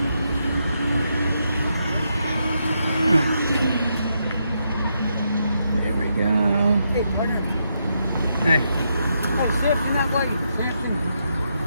There we go. Hey, partner. Hey. Hey, Samson, that way. Samson.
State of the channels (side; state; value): both; inverted; correlation -0.80